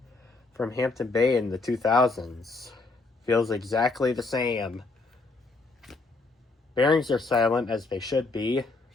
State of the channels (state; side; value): quieter; right; 3.6 dB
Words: from Hampton Bay in the 2000s. Feels exactly the same. Bearings are silent as they should be.